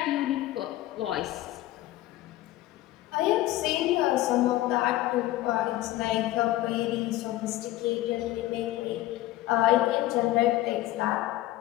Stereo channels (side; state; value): right; quieter; 15.9 dB